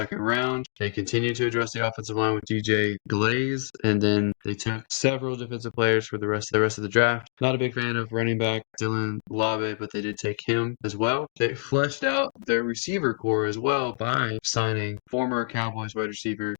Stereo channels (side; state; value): right; silent; digital silence